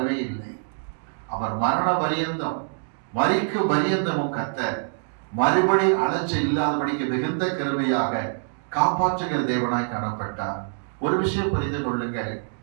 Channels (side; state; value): left; silent; digital silence